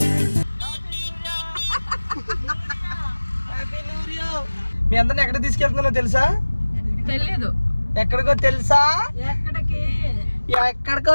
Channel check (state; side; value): inverted; both; correlation -1.00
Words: మీ అందరిని ఎక్కడ తీసుకెళ్తున్నానో తెలుసా? తెలియదు. ఎక్కడికో తెలుసా? ఎక్కడికో